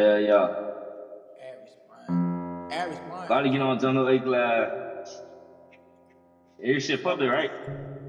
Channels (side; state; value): both; identical; correlation 1.00